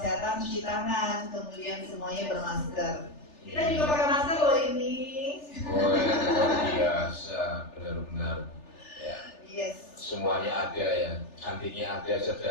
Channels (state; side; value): late; right; 3.4 ms